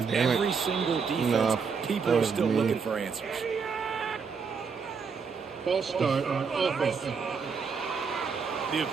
every single defense. People are still looking for answers. False start on offense. The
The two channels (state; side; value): quieter; left; 5.6 dB